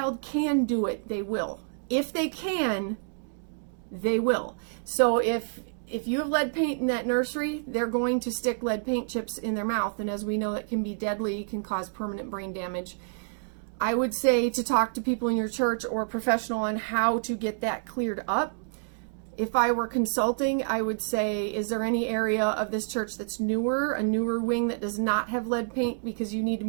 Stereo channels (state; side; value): silent; left; digital silence